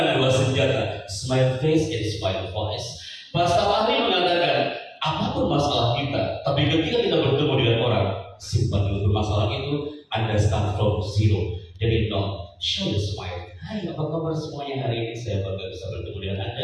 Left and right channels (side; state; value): both; identical; correlation 1.00